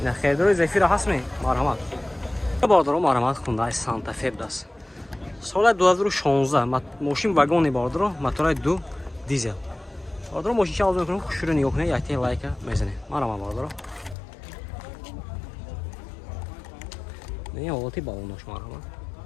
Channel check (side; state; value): right; drops out; at 14.2 s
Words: Не хердро Zafira ҳастме? Марҳамат. Бародаро марҳамат Hyundai Santa Fe даст. Соли 2016 мошин вагони бародаро, мотори 2 дизел. Бародаро мошинча арзон мекунем, хушро нигоҳ кунед, якте лайка мезанед. Марҳамат бародаро. Не ҳолати балонош марҳамат.